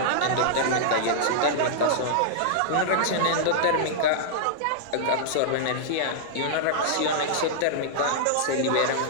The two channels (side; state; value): both; different; correlation -0.02